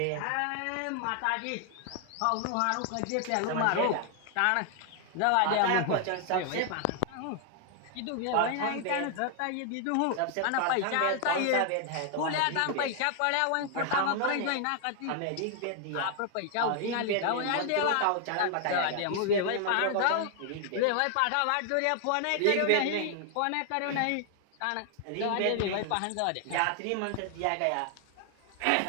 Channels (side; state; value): both; different; correlation 0.00